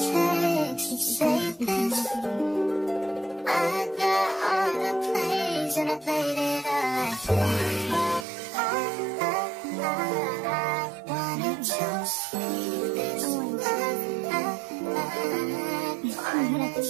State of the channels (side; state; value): left; drops out; at 8.2 s